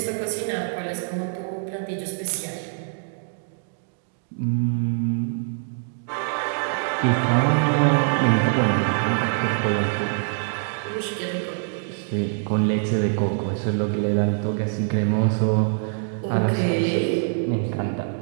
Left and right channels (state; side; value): silent; left; digital silence